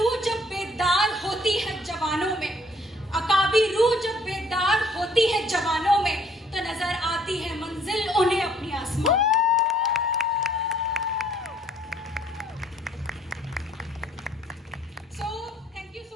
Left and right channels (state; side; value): normal; both; correlation 0.62